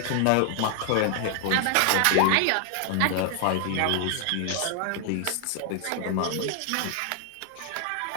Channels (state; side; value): different; both; correlation 0.00